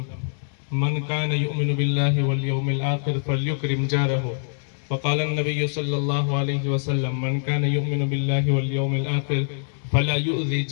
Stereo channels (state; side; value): silent; right; digital silence